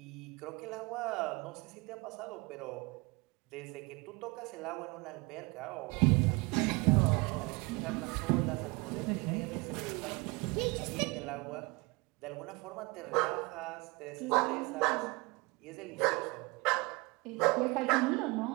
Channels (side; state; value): left; quieter; 26.2 dB